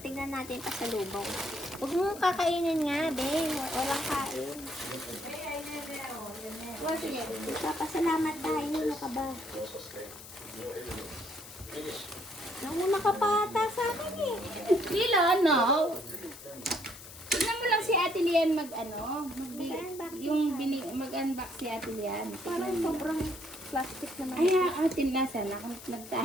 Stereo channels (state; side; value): noise; left; hiss, 16 dB below the sound